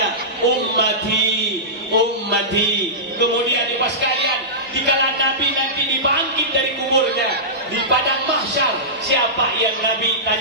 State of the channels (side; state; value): both; normal; correlation -0.17